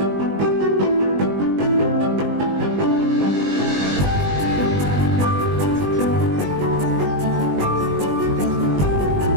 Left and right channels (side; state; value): left; late; 20 ms